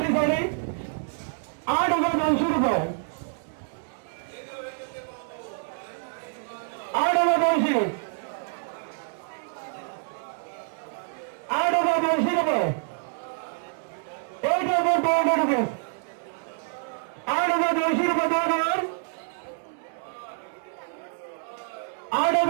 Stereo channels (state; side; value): silent; left; digital silence